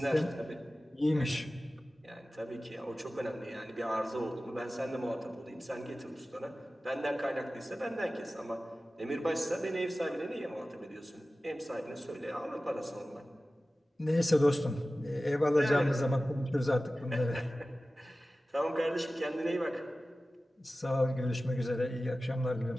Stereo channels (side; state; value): both; normal; correlation 0.96